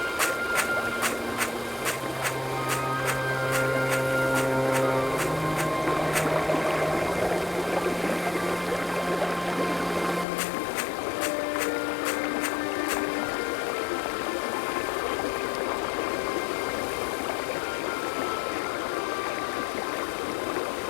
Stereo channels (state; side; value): drops out; right; at 10.2 s